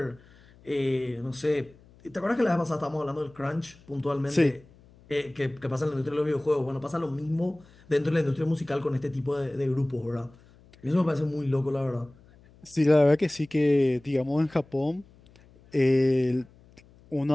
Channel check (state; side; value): noise; left; hum, 27 dB below the sound